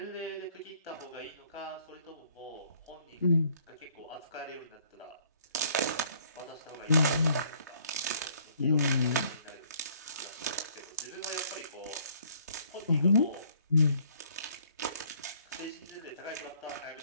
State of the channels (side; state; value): both; inverted; correlation -0.62